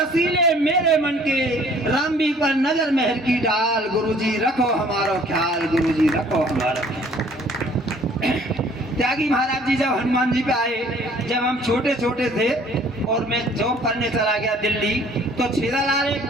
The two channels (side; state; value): both; normal; correlation 0.56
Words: मेरे मन के, रामबी पर नजर मेहर की डाल, गुरुजी रखो हमारो ख्याल, गुरुजी रखो हमारो ख्याल। त्यागी महाराज जी जब हनुमान जी पे आए, जब हम छोटे छोटे थे और मैं जॉब करने चला गया दिल्ली, तो छेदालाल एक